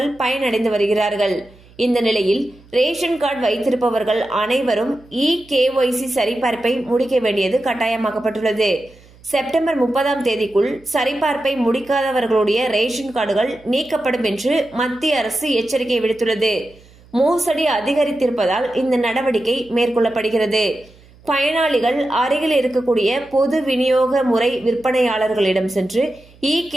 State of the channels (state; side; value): noise; right; hum, 26 dB below the sound